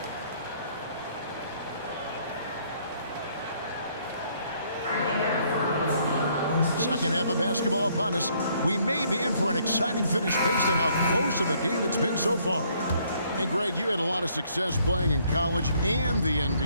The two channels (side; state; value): both; inverted; correlation -0.66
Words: Second half of basketball upon us. We may be in for an exciting finish based on how close of a game it's been so far. Hey, Greg, you had a lot of success playing in college and the